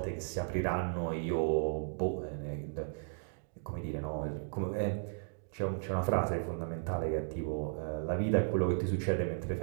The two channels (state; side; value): silent; left; digital silence